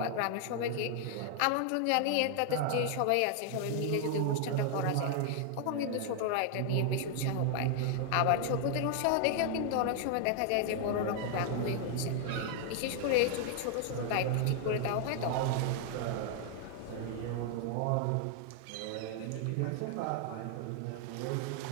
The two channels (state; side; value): different; both; correlation 0.00